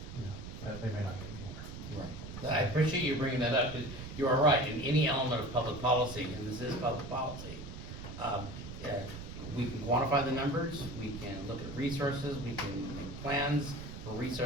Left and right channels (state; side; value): noise; right; rumble, 10 dB below the sound